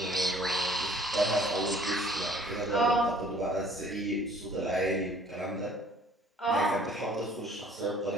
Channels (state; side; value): normal; both; correlation 0.54